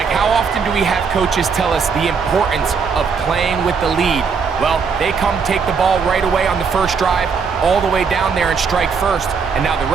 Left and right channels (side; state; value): left; quieter; 5.7 dB